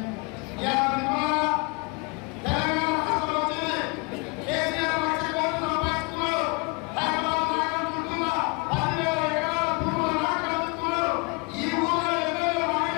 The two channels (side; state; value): right; quieter; 30.2 dB